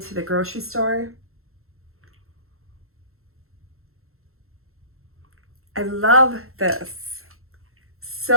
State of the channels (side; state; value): left; late; 0.62 ms